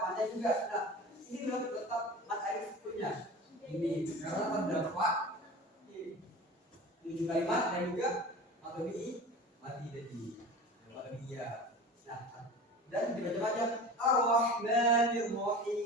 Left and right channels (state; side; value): normal; both; correlation 0.35